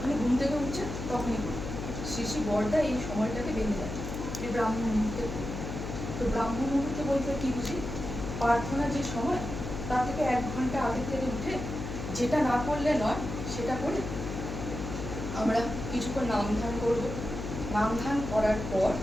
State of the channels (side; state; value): left; noise; hum, 6 dB below the sound